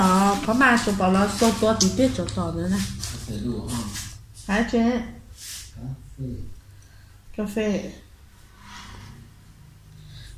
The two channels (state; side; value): identical; both; correlation 1.00